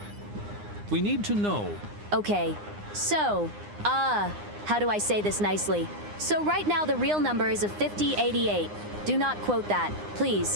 We need to know. Okay, so, how do I say this nicely? So right now the real number is a 5088. Do not quote that,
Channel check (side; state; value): left; late; 9.8 ms